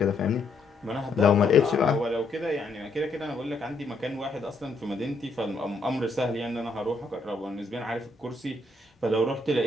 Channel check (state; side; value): quieter; right; 3.2 dB